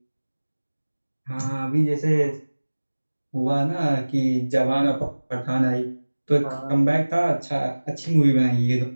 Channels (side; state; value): both; inverted; correlation -1.00